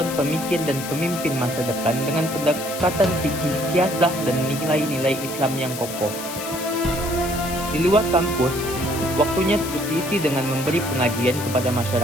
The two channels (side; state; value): left; noise; hiss, 9 dB below the sound